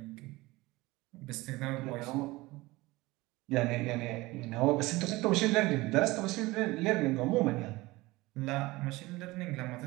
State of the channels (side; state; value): left; quieter; 20.6 dB